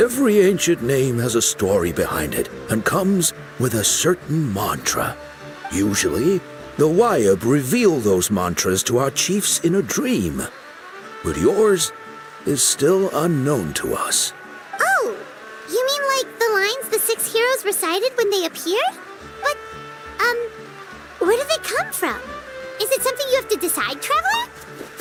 ancient name has a story behind it and comes with a certain mantra. Usually, the Wayab reveal those mantras to our chiefs in a dream. But yours is still unknown to us. Oh, you mean like the lines the 6 heroes recited when they appeared? But, where do they come from? Is it something you have to decide, Traveler?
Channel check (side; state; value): both; identical; correlation 1.00